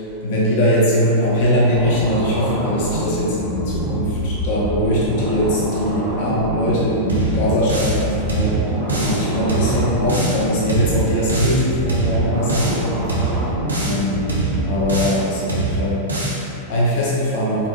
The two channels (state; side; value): normal; both; correlation -0.15